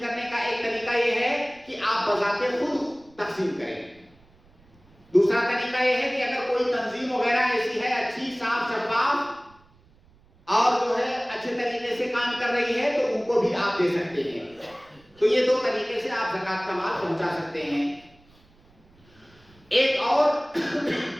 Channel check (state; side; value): noise; right; rumble, 30 dB below the sound